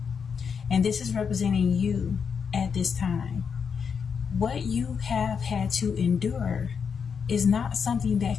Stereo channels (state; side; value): quieter; right; 6.4 dB